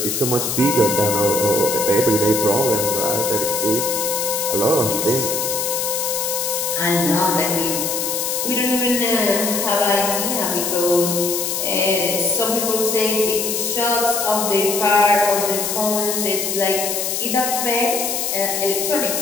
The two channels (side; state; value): left; noise; hiss, 1 dB below the sound